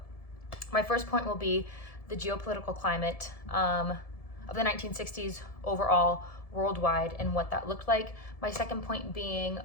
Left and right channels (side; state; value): right; late; 1.7 ms